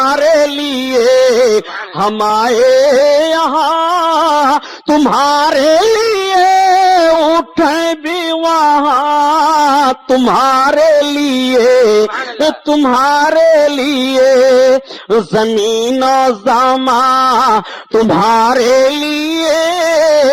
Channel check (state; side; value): identical; both; correlation 1.00